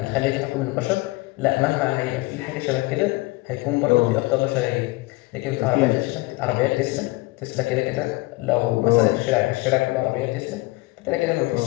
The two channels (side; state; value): right; quieter; 22.3 dB